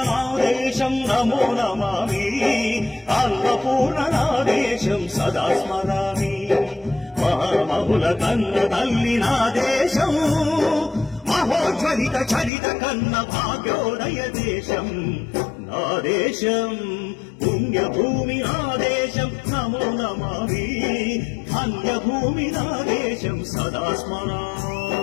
నా దేశం నమో నమామి అన్నపూర్ణ నా దేశం సదా స్మరామి మహామహుల కన్న తల్లి నా దేశం మహోజ్వలిత చరిత కన్న భాగ్యోదయ దేశం నా దేశం పుణ్యభూమి నా దేశం నమో నమామి ధన్యభూమి నా దేశం సదా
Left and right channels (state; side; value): drops out; right; at 12.5 s